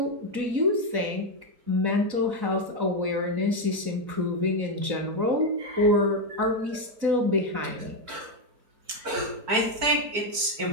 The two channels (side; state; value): left; late; 4.5 ms